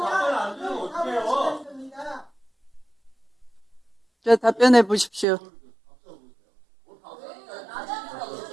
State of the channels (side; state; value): left; drops out; at 5.2 s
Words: 자, 답변해 보십시오.